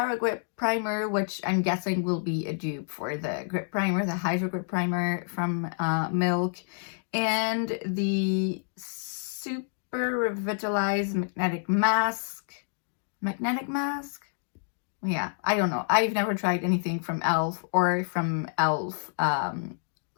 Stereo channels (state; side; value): silent; right; digital silence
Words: Grip Primer, which I'm guessing will be a dupe for the Grip Primer, the Hydro Grip Primer from Milk, and the Super Revitalized Magnetic Mask. Magnetic Mask? Yeah, I don't know. I've never tried anything from e.l.f. or from e.l.f.